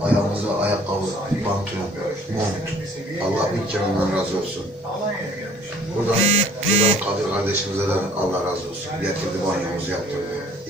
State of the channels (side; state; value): both; normal; correlation 0.55